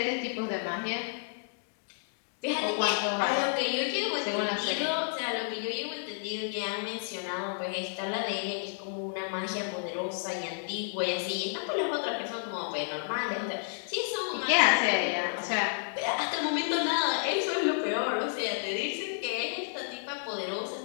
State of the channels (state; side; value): silent; right; digital silence